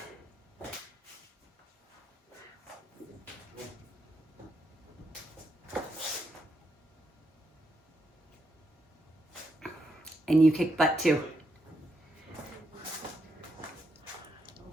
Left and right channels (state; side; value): normal; both; correlation 0.81